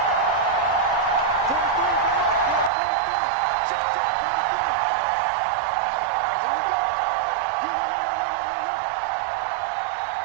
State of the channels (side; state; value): left; drops out; at 2.7 s